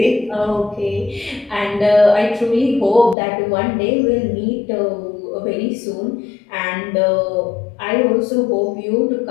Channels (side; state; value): right; drops out; at 3.2 s